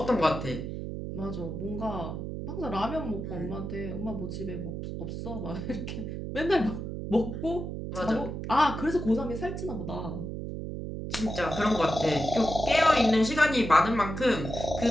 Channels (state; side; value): noise; right; hum, 6 dB below the sound